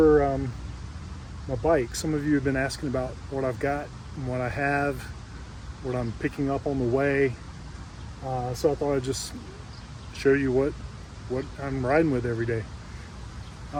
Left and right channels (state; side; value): identical; both; correlation 1.00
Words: my bike. Some of you have been asking about what I've got and what I have, what I'm picking up on the way. So I thought I'd just show you what I'm riding with every day.